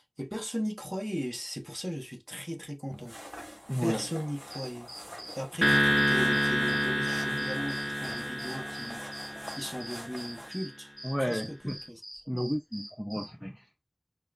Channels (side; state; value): both; identical; correlation 1.00